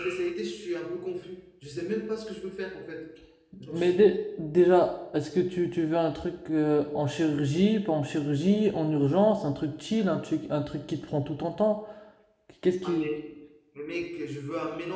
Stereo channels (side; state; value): both; identical; correlation 1.00